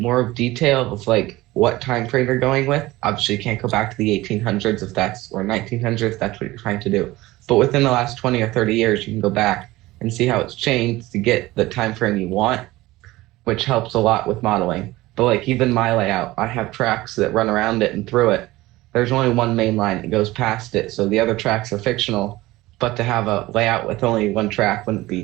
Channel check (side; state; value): left; quieter; 18.5 dB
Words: detail of like what time frame you're going with. Obviously, you can't go back to the 1800s if that's or 1900s if that's what you're trying to do. But within the last 20 or 30 years, you can go back and see how it's changed to get the time frame you want, which helps a lot with modeling. But like even my layout, I have tracks that run around it and through it. There's only one main line that goes past it, so the other tracks are fictional. But to have a layout with only one track wouldn't